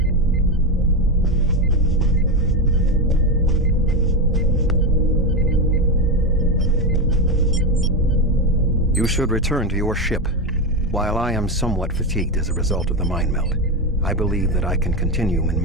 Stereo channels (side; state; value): both; normal; correlation 0.13